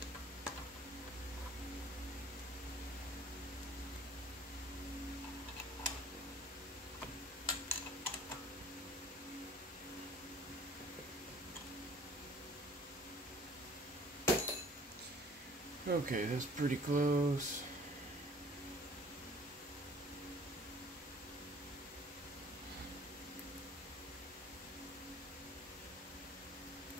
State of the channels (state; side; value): normal; both; correlation 0.50